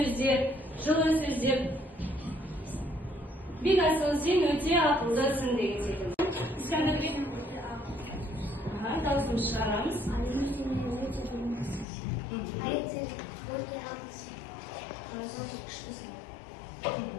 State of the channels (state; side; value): drops out; right; at 11.9 s